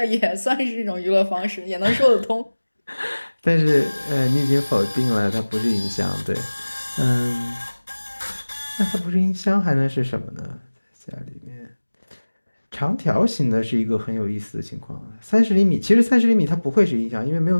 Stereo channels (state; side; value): inverted; both; correlation -1.00